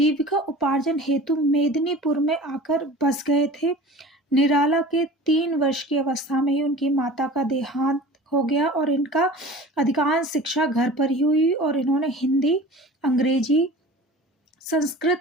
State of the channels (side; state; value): both; normal; correlation 0.40